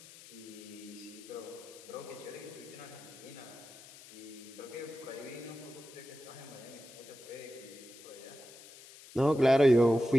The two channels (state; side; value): noise; left; hiss, 18 dB below the sound